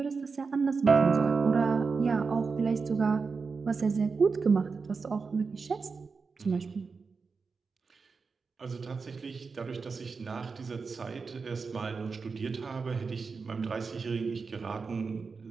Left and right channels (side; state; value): left; quieter; 4.8 dB